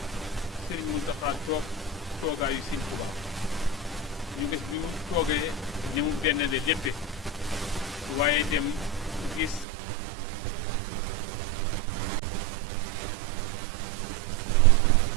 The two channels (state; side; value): drops out; left; at 9.7 s